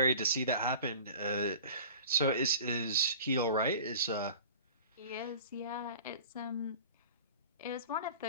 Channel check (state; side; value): inverted; both; correlation -0.41